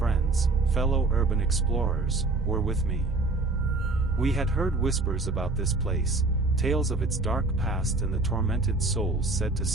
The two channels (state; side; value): quieter; left; 3.3 dB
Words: fellow urban explorers, were with me. We had heard whispers about this place, tales of its dark past and the tormented souls said to